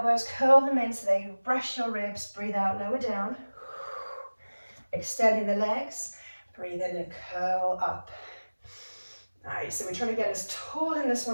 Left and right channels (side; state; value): both; inverted; correlation -1.00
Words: curl them in so they brush your ribs. Breathe out, lower down. Extending the legs, breathe in and curl up. Nice, so we're trying to get as tall in this